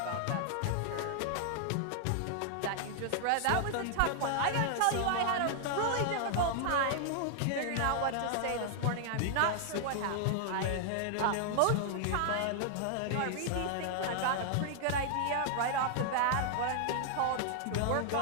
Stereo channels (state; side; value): different; both; correlation 0.00